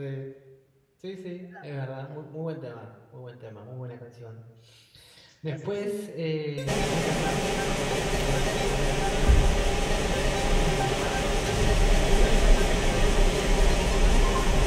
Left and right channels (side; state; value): both; identical; correlation 1.00